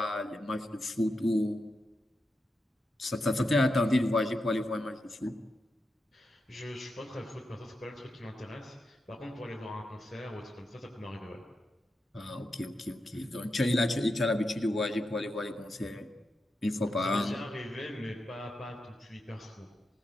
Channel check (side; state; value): both; normal; correlation 0.87